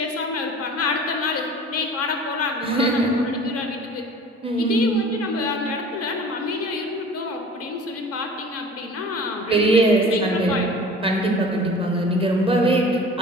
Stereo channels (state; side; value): normal; both; correlation 0.43